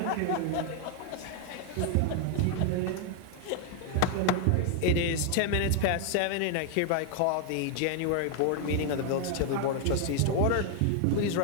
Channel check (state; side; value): different; both; correlation 0.00